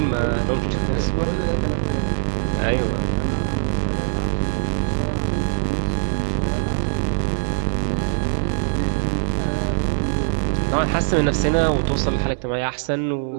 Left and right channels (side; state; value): left; silent; digital silence